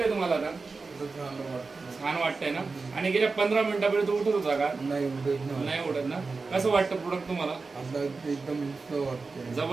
तुम्हाला आता. छान वाटतंय ना. आणि गेल्या 15 मिनिटापर्यंत उठत होता का? नाही उठत ना. कसं वाटतं प्रोडक्ट तुम्हाला? एकदम वाटतंय,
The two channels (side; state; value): left; quieter; 4.2 dB